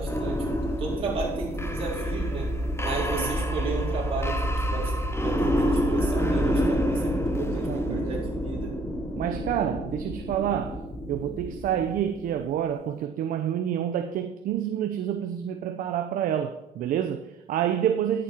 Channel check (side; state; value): left; quieter; 3.2 dB